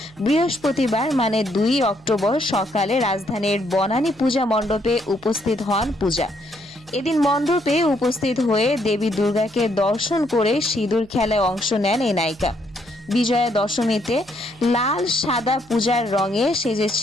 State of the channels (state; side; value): noise; right; hum, 26 dB below the sound